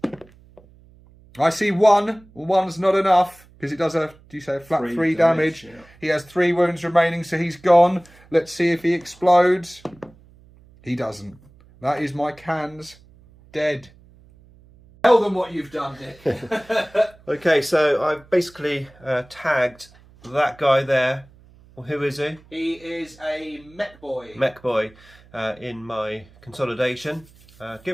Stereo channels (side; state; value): right; noise; hum, 26 dB below the sound